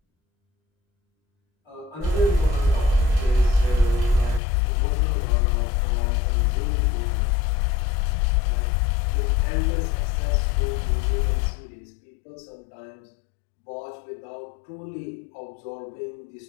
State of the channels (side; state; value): right; drops out; at 4.4 s